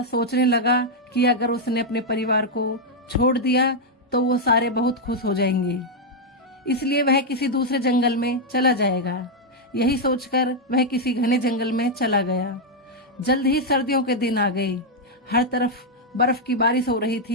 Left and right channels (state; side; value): normal; both; correlation -0.01